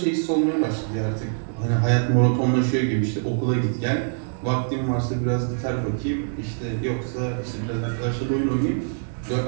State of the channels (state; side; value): silent; left; digital silence